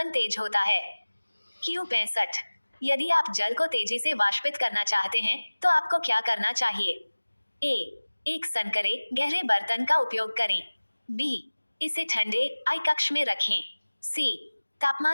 तेज होता है। Q65, यदि आप जल को तेजी से वाष्पित करना चाहते हैं तो आपको क्या करना चाहिए? ए, एक संकरे गहरे बर्तन का उपयोग करें। बी, इसे ठंडे आई कक्ष में रखें। सी,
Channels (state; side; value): inverted; both; correlation -1.00